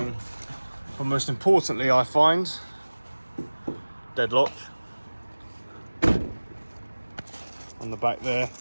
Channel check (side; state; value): both; inverted; correlation -1.00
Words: But most importantly, I find deadlock on the back there.